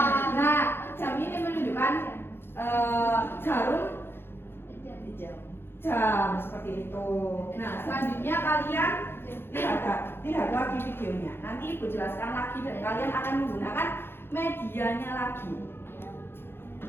Nah, jam ini menunjukkan jarum jam seperti itu. Nah, selanjutnya kalian lihat lagi videonya. Nanti Ibu jelaskan lagi dan kalian akan menggunakan medianya lagi.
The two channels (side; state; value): right; late; 0.11 ms